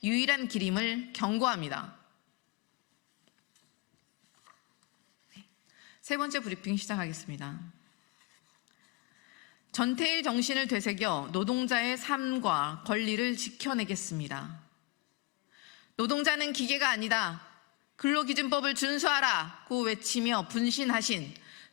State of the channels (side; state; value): right; quieter; 23.4 dB